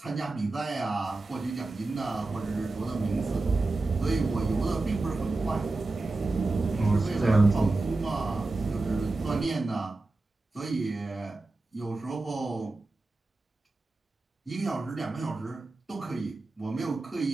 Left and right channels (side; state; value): left; quieter; 3.2 dB